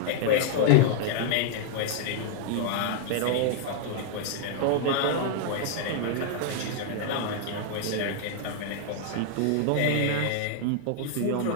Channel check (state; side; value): different; both; correlation -0.01